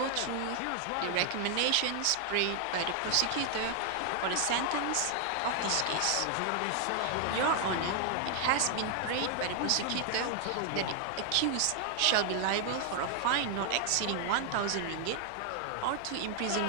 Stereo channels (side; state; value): both; different; correlation 0.00